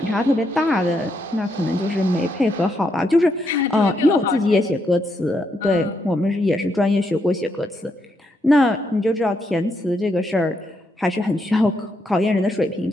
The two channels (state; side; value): normal; both; correlation 0.78